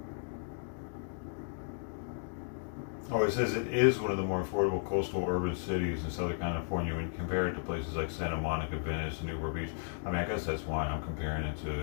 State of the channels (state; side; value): silent; right; digital silence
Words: Oh, it says it is one of the more affordable coastal urban cities in Southern California when you compare it to places like Santa Monica, Venice, and Newport Beach. I mean, I guess that's why I'm comparing it